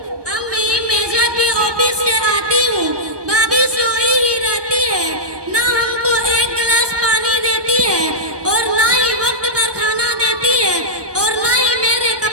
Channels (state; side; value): late; left; 1.2 ms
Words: अम्मी, मैं जब भी ऑफिस से आती हूँ भाभी सोई ही रहती है। ना हमको एक गिलास पानी देती है और ना ही वक्त पर खाना देती है और ना ही मेरे